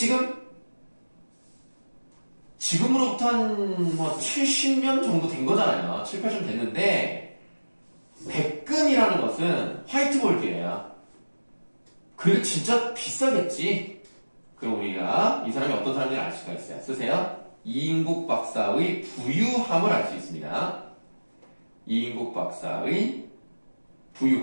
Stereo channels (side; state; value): both; inverted; correlation -1.00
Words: 지금으로부터 한 70년 정도 된 거잖아요. 7, 80년 됐는데 백금이라는 것은 화이트볼드예요. 그래도 진짜 비싸겠지. 그럼 우리가 이 사람이 어떤 사람인지 알 수가 있어요. 쓰세요. 이인국 박사의 부유함을 알 수 있습니다. 이인국 박사의